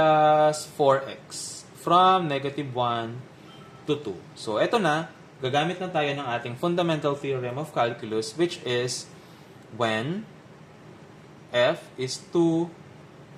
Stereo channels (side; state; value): both; identical; correlation 1.00